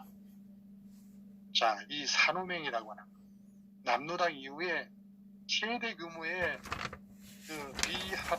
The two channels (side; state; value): both; identical; correlation 1.00